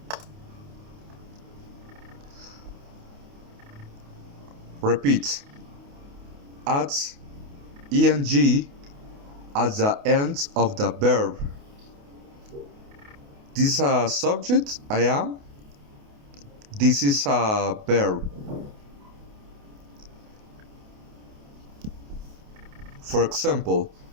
Repeat. Add ing at the end of the verb. This is a subject, I am. This is a verb. For example,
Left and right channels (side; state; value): left; late; 28 ms